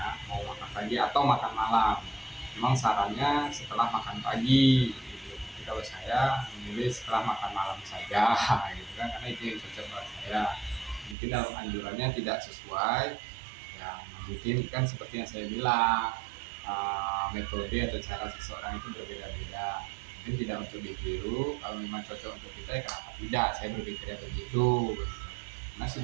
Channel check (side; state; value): left; drops out; at 11.2 s